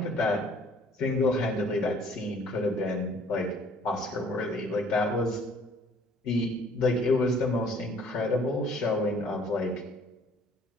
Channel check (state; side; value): normal; both; correlation 0.57